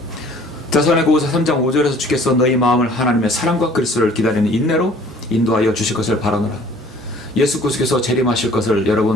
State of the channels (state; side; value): normal; both; correlation 0.53